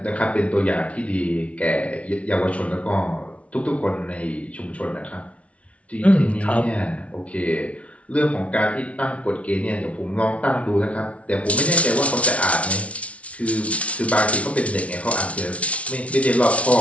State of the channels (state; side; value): late; right; 0.063 ms